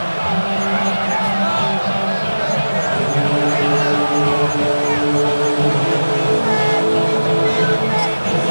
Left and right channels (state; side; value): inverted; both; correlation -1.00